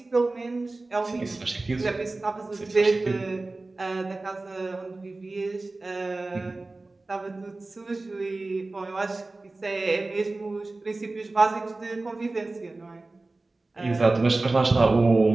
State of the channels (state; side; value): quieter; left; 3.2 dB